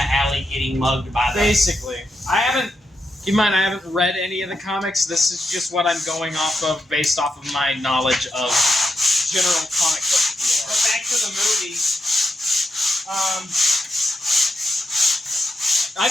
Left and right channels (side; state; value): both; normal; correlation 0.84